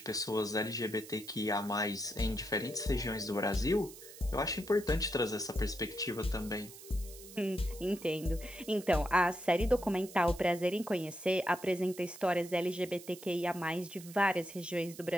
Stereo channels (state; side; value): noise; right; hiss, 16 dB below the sound